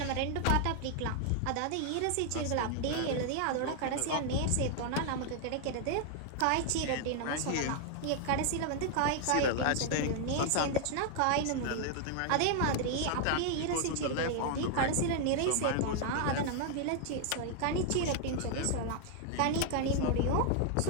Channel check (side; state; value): both; different; correlation 0.00